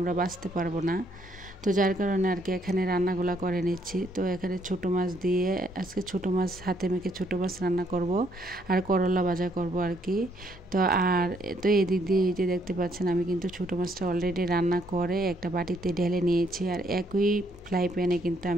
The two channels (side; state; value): both; normal; correlation 0.70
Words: বাঁচতে পারবো না। তো যার কারণে আর কি এখানে রান্নাগুলো করে নিচ্ছি। তো এখানে ছোটো মাছ দিয়ে আজকে ছোটো মাছ হাতে মেখে ছোটো মাছ রান্না করব, আর করলা ভাজা করব আর কি। তো এদিক দিয়ে এই যে দেখতে পাচ্ছেন আমি কিন্তু ছোটো মাছটা অলরেডি রান্না করে একটা বাটিতে ঢেলে নিয়েছি, আর একই ফ্রাই প্যানে কিন্তু